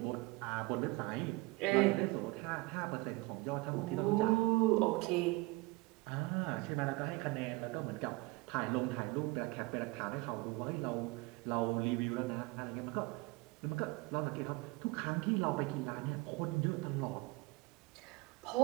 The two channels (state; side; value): quieter; left; 23.3 dB